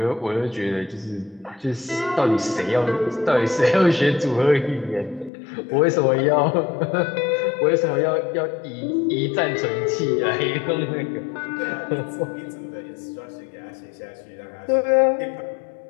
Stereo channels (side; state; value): right; drops out; at 5.3 s